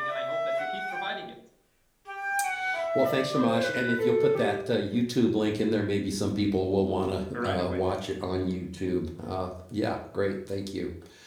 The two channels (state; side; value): identical; both; correlation 1.00